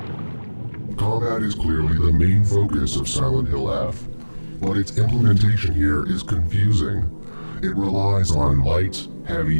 combat is clearly the main focus of Silent Hill F, but its implementation here is confusing. It relies on light,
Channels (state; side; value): inverted; both; correlation -1.00